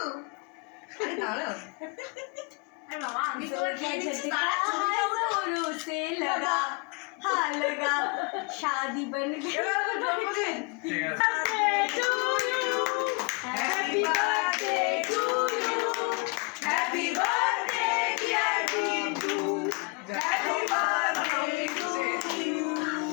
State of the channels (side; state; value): right; quieter; 31.0 dB